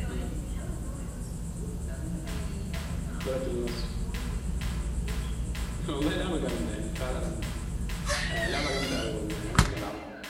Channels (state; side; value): identical; both; correlation 1.00